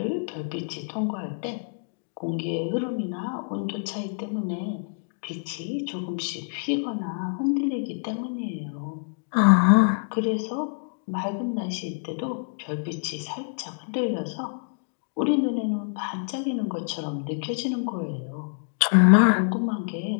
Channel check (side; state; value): right; silent; digital silence